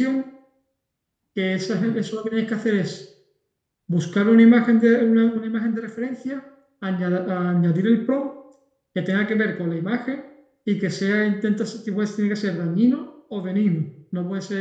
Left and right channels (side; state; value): both; identical; correlation 1.00